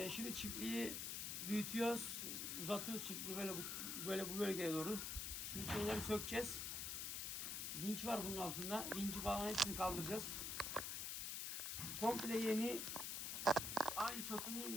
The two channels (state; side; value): noise; left; hiss, 2 dB below the sound